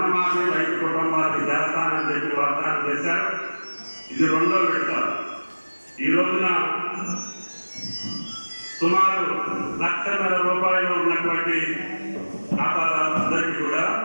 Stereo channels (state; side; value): inverted; both; correlation -1.00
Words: రైతు కుటుంబాలకు చేస్తానని చెప్పి వాగ్దానం చేశారు. ఇది 2వ విడత. ఈ రోజున సుమారు ₹1,00,000 ఉన్నటువంటి ఖాతాదారులందరికీ కూడా